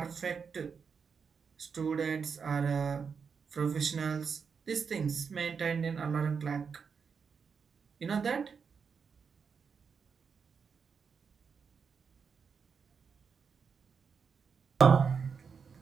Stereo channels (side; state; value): left; quieter; 6.0 dB